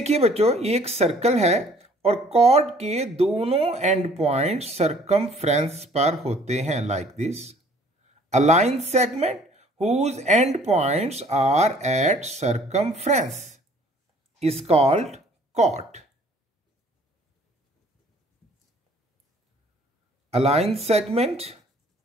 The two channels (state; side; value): normal; both; correlation 0.56